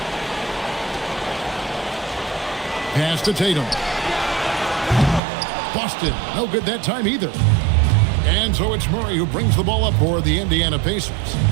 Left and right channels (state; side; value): drops out; left; at 5.2 s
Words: Pass to Tatum. Boston, no good that time either. And so it's Murray who brings the ball up for the Indiana Pacers.